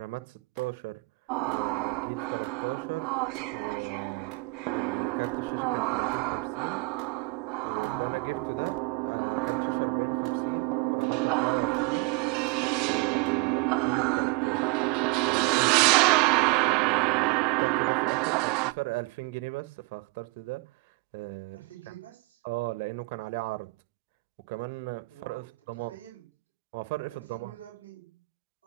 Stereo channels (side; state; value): left; quieter; 25.9 dB